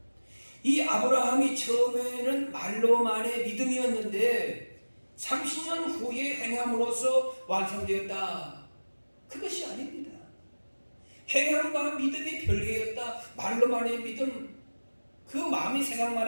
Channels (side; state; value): both; inverted; correlation -1.00